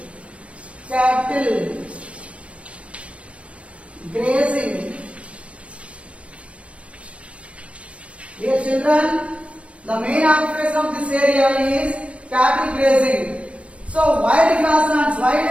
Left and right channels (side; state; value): left; late; 0.062 ms